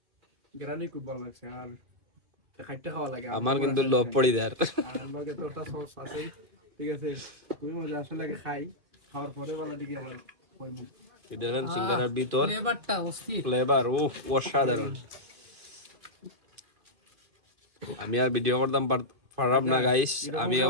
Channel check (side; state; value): left; late; 2.5 ms